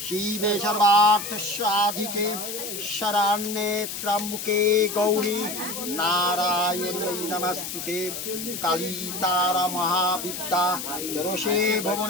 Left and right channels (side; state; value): left; noise; hiss, 6 dB below the sound